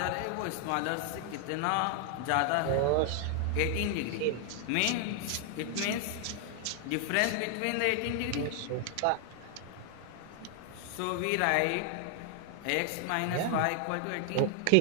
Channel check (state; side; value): different; both; correlation 0.00